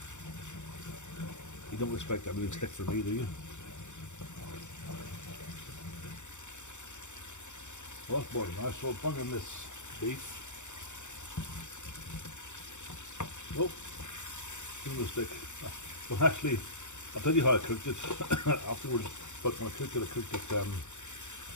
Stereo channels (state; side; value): late; right; 0.84 ms